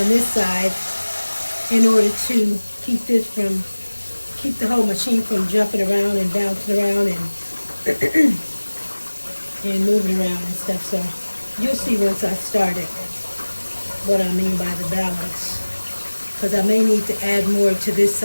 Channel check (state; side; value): inverted; both; correlation -1.00